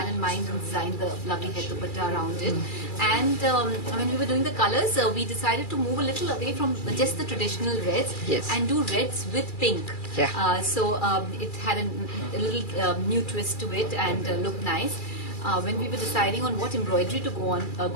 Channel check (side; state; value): right; late; 2.3 ms